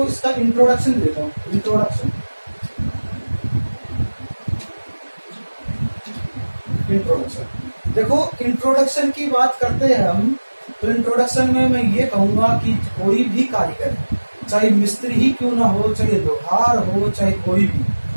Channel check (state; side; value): inverted; both; correlation -1.00